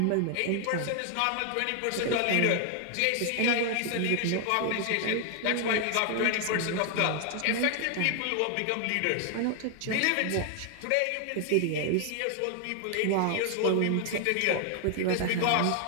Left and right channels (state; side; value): different; both; correlation 0.00